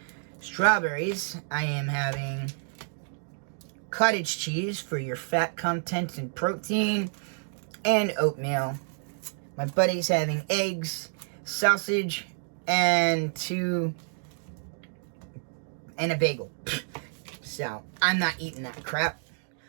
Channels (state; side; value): silent; left; 59 dB below the other